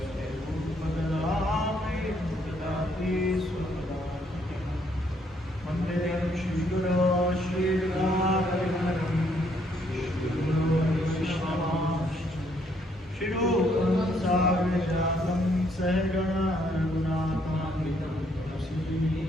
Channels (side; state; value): both; normal; correlation 0.70